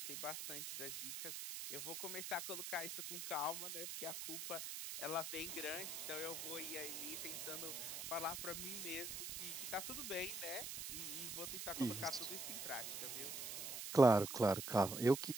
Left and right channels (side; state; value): right; noise; hiss, 5 dB below the sound